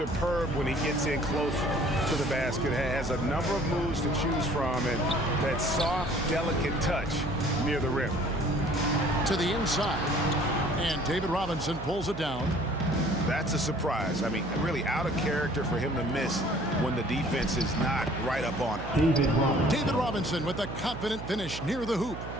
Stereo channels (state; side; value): noise; right; hum, 10 dB below the sound